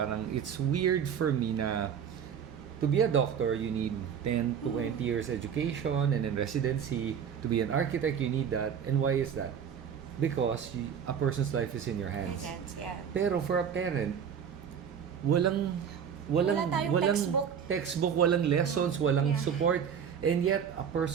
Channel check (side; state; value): left; quieter; 7.7 dB